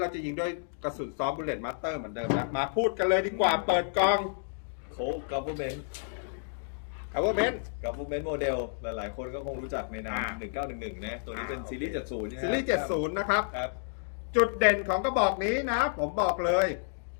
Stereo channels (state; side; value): silent; right; digital silence